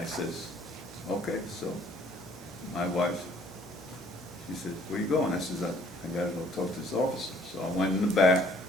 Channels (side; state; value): both; normal; correlation 0.59